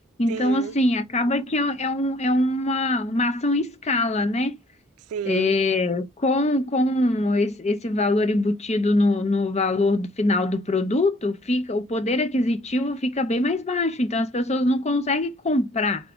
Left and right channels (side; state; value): both; normal; correlation 0.59